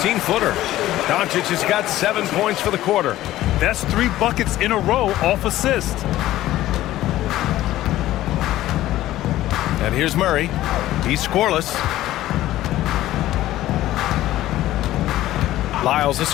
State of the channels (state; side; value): quieter; right; 14.8 dB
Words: Doncic has got 7 points for the quarter. That's 3 buckets in a row off assist. And here's Murray. He's scoreless. Lyles a